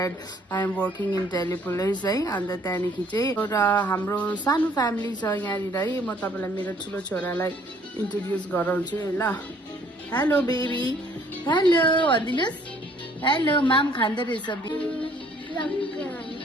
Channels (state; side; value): normal; both; correlation 0.60